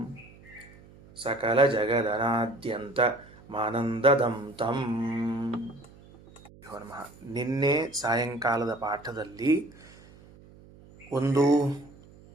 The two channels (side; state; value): right; noise; hum, 23 dB below the sound